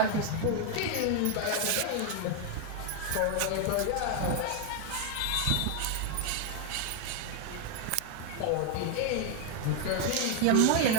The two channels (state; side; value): different; both; correlation 0.01